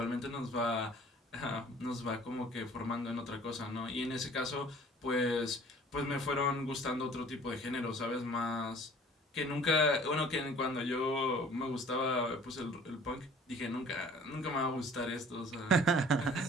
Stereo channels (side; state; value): both; normal; correlation 0.50